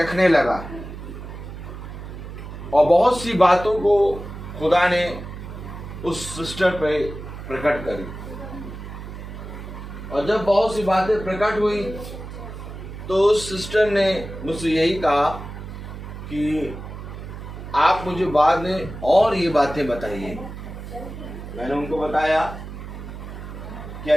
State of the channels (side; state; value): right; noise; hum, 10 dB below the sound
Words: लगा और बहुत सी बातों को खुदा ने उस सिस्टर पे प्रकट करी। और जब बहुत सी बातें प्रकट हुई तो उस सिस्टर ने मुझसे यही कहा कि आप मुझे बाद में और ये बातें बताइए। मैंने उनको बताया कि